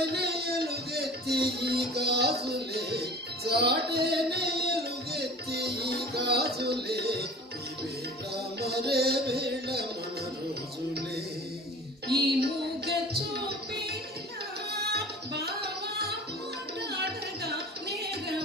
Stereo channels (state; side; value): normal; both; correlation 0.41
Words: ఎలుగెత్తి ఈ గాజులే, చాటేనే ఎలుగెత్తి ఈ గాజులే, ఈ వేళ మరే వేళ మన రోజులే. ఈ మూగ చూపేనా బావా మాట్లాడగా